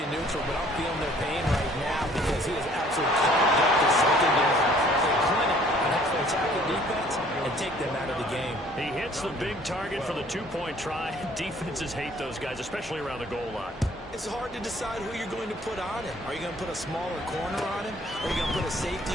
neutral, but I'm feeling their pain right now because he has absolutely carved up the secondary. They're clinic on how to attack the defense and take them out of the game. He hits the big target for the 2-point try. Defenses hate those guys, especially around the goal line. It's hard to decide who you're going to put on him. Are you going to put a smaller corner on him? Are you going to put a safety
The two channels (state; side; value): normal; both; correlation 0.56